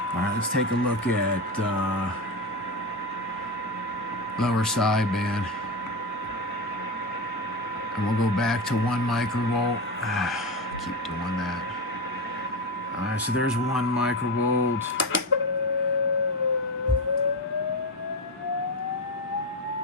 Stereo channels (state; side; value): normal; both; correlation 0.18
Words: All right, let's take a look at lower sideband. And we'll go back to 1 microvolt. Keep doing that. All right, so there's 1 microvolt.